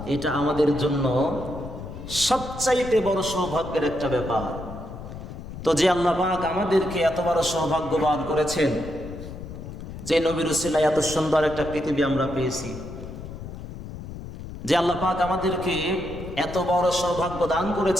এটা আমাদের জন্য সবচাইতে বড় সৌভাগ্যের একটা ব্যাপার। তো যে আল্লাহ পাক আমাদেরকে এত বড় সৌভাগ্যবান করেছেন, যে নবীর উসিলায় এত সুন্দর একটা পৃথিবী আমরা পেয়েছি, যে আল্লাহ পাক আমাদেরকে এত বড় সৌভাগ্য দান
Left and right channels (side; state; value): left; noise; rumble, 11 dB below the sound